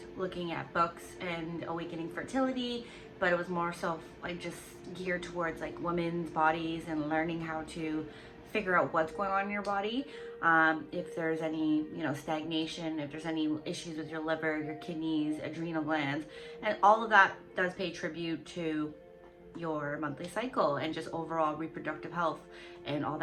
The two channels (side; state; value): both; identical; correlation 1.00